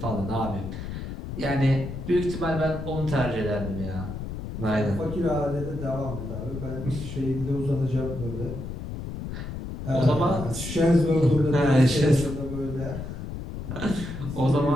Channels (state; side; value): noise; left; rumble, 7 dB below the sound